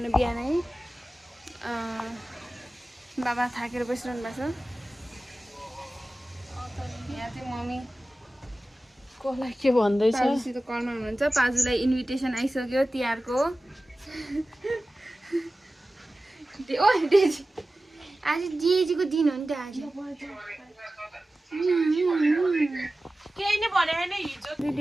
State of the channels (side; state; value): both; normal; correlation 0.96